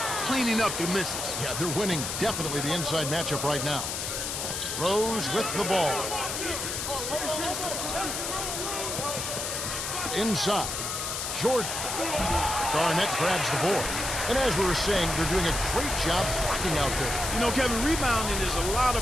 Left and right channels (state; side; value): noise; left; hiss, 3 dB below the sound